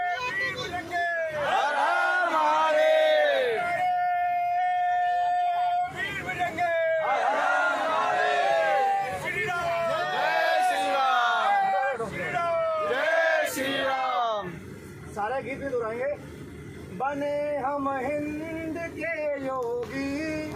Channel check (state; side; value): identical; both; correlation 1.00